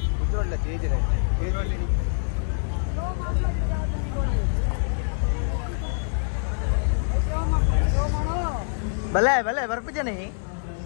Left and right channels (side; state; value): right; silent; digital silence